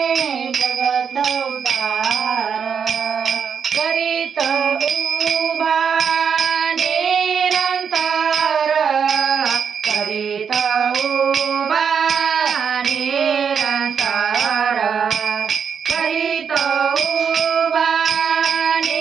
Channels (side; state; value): left; quieter; 6.9 dB